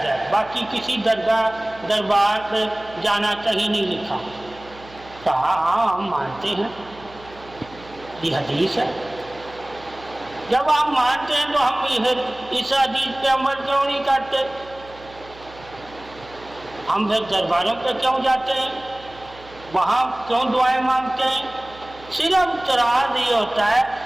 ہے، باقی کسی دربار پہ جانا کہیں نہیں لکھا، کہا ہاں ہم مانتے ہیں، یہ حدیث ہے۔ جب ہم مانتے ہیں تو ہم اس حدیث پہ عمل کیوں نہیں کرتے؟ ہم پھر درباروں پہ کیوں جاتے ہیں؟ وہاں کیوں دعائیں مانگتے ہیں؟ صرف اعتراض یہ ہوتا ہے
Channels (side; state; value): right; noise; hum, 21 dB below the sound